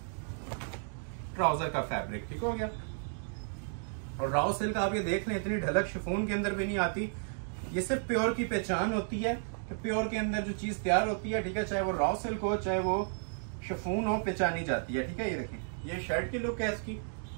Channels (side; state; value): left; silent; digital silence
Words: ट्राउजर का फैब्रिक, ठीक हो गया। और रॉ सिल्क आप ये देख लें, इतनी ढलक शिफॉन के अंदर भी नहीं आती। ये सिर्फ प्योर की पहचान होती है कि प्योर के अंदर जो चीज तैयार होती है, ठीक है, चाहे वो रॉ सिल्क हो चाहे वो शिफॉन हो, पहचानी जाती है, ठीक है। ये देखिए, ये शर्ट की लुक है इसकी,